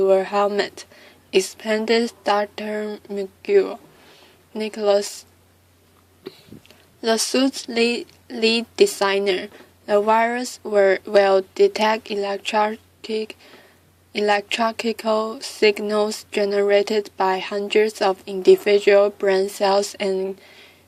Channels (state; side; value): identical; both; correlation 1.00